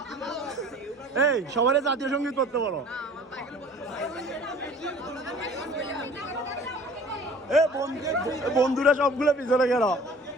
এই সবাই জাতীয় সঙ্গীত করতে বলো। এ বন্ধুরা সবগুলো পিছনে গেল,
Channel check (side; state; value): both; normal; correlation 0.47